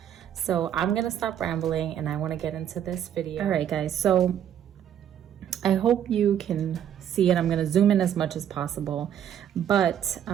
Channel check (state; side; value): quieter; left; 9.8 dB